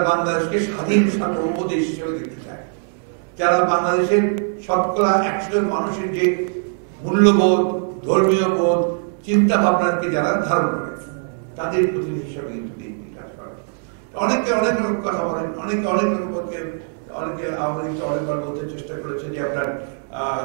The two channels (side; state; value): left; silent; 65 dB below the other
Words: বাংলাদেশকে স্বাধীন সার্বভৌম দেশ হিসেবে দেখতে চায়, যারা বাংলাদেশের শতকরা 100 জন মানুষের যে মূল্যবোধ, ধর্মীয় বোধ, চিন্তা ভাবনাকে যারা ধারণ করে, তাদের প্রতিনিধি হিসাবে কিন্তু বিএনপি কাজ করে। অনেকে অনেক রকম কথা বলেন, অনেকে অনেক রকম, অনেকে আওয়ামী লীগকে অনেকবার বলতে চেষ্টা করেছে যে আপনার